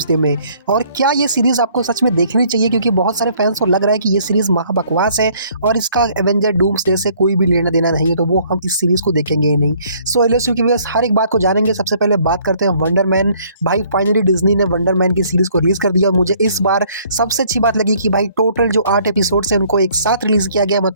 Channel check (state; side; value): inverted; both; correlation -0.61